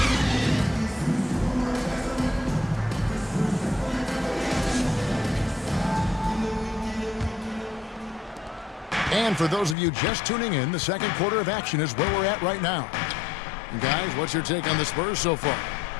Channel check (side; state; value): right; drops out; at 9.8 s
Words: And for those of you just tuning in, the second quarter of action is where we're at right now. And guys, what's your take on the Spurs so far?